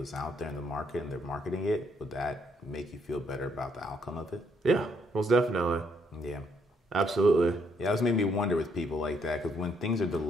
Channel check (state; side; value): normal; both; correlation 0.71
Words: out there in the market and they're marketing it. Would that make you feel better about the outcome of it? Yeah, most definitely. Yeah. Absolutely. Yeah, that's made me wonder with people like that, because when things are